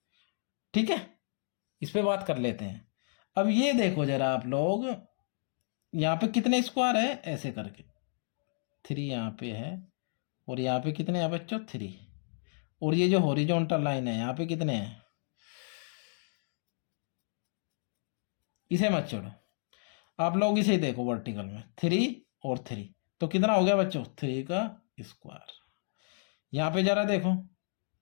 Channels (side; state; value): right; silent; digital silence